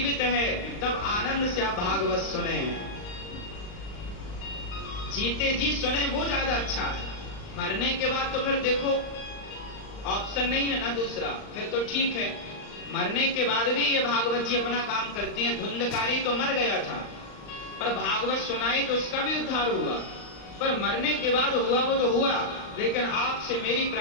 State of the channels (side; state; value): right; late; 39 ms